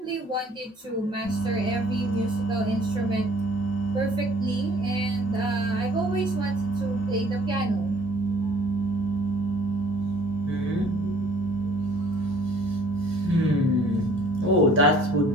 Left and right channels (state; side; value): normal; both; correlation 0.55